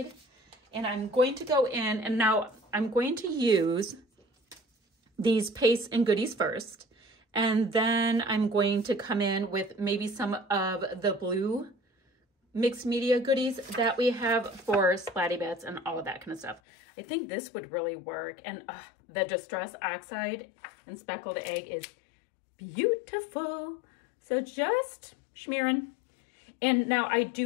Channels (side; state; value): right; drops out; at 16.6 s